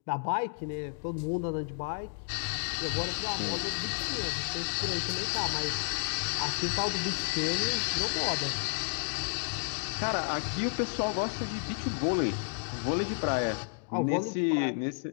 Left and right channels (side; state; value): right; silent; digital silence